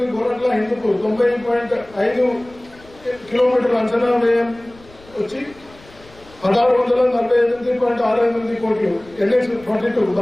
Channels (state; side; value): noise; left; rumble, 25 dB below the sound